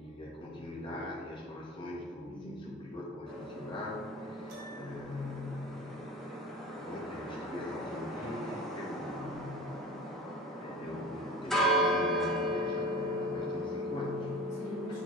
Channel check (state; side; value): normal; both; correlation 0.36